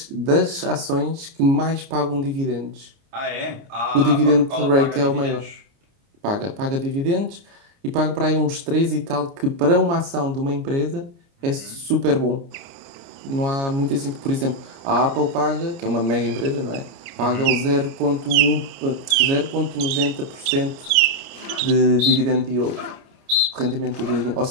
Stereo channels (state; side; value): late; left; 29 ms